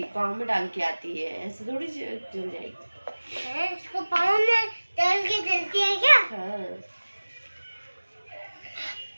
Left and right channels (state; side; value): inverted; both; correlation -1.00